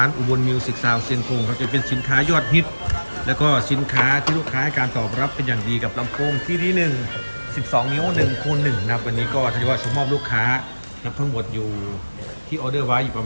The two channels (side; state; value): both; inverted; correlation -1.00